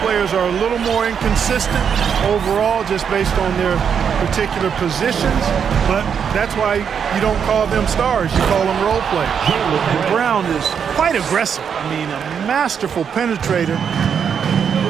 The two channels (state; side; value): quieter; left; 7.3 dB